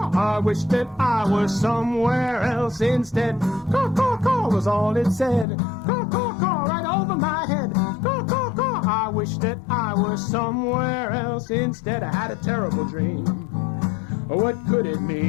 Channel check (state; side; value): drops out; right; at 5.5 s